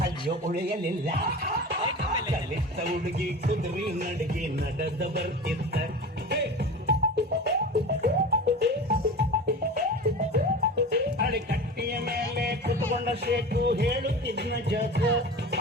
ಅಯ್ಯೋ ಉಳಿಯಲಿಲ್ಲ ಕಲಿತ ಹುಡುಗಿ ಕುದುರಿ ನಡಗಿ ನಡೆದ ಬರ್ತಿದ್ದ ಅಡಿಕಟ್ಟಿಯ ಮೇಲೆ ಕುತ್ಕೊಂಡ ಶೇಖು ಹೇಳುತ್ತಿದ್ನ ಜಗ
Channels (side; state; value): both; normal; correlation 0.32